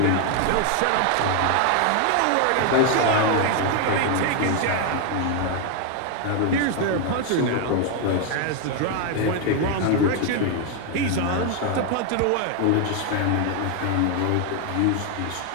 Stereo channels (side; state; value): both; different; correlation 0.01